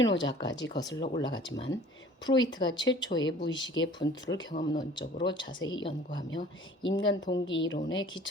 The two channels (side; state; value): both; normal; correlation 0.49